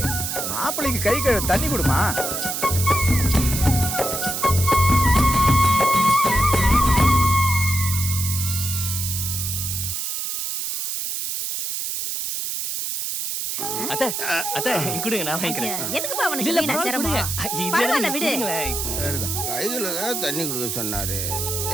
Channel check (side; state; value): right; noise; hiss, 2 dB below the sound